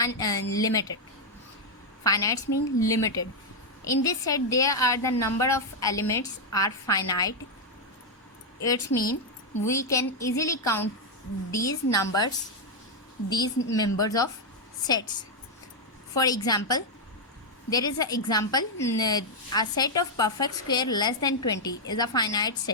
Finite means limited. In this set there are the number of elements are finite. It means we can easily count these members of sets. For example, there is an example, a set of perfect square less than 20 is a finite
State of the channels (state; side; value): normal; both; correlation -0.01